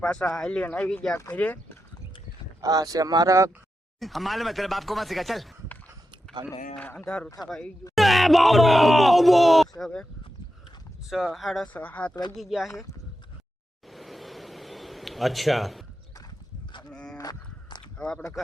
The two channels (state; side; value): normal; both; correlation 0.89